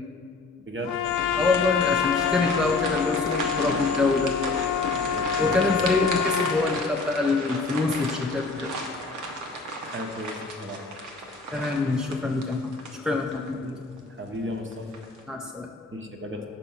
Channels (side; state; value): right; quieter; 3.8 dB